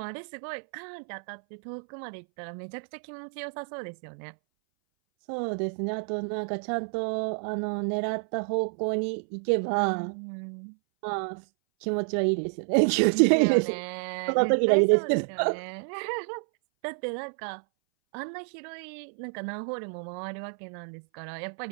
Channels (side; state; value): left; silent; 58 dB below the other